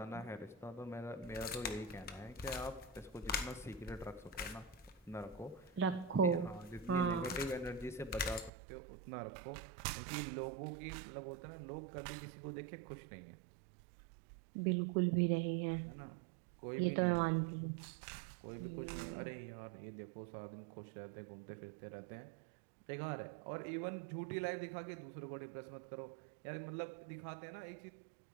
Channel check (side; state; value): left; drops out; at 8.5 s